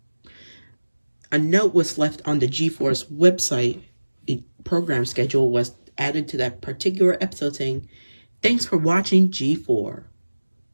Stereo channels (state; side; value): inverted; both; correlation -1.00